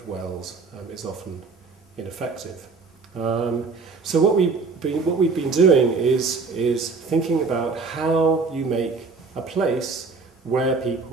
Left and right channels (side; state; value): left; quieter; 4.4 dB